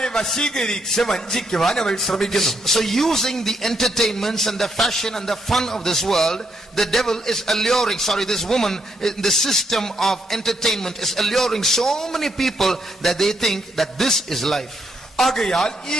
വശീകരിച്ച് വഞ്ചിക്കുവാൻ അവൾ ശ്രമിക്കുന്നു. So using the entertainments and the fashion and the fun of this world, the devil is alluring, this woman in the system of entertainment is alluring so many people that they think that this is life. ആകയാൽ ഈ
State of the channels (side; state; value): both; normal; correlation 0.76